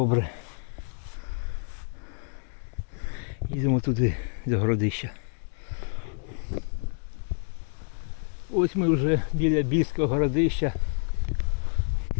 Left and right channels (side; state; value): right; silent; 59 dB below the other